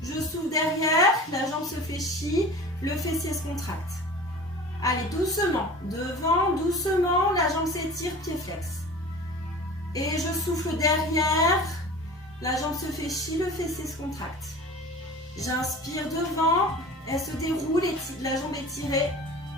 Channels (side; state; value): both; normal; correlation 0.38